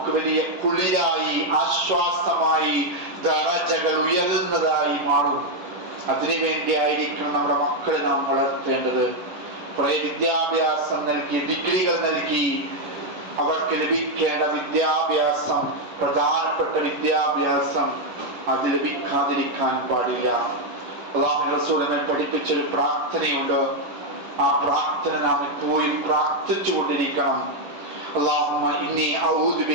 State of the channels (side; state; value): left; late; 11 ms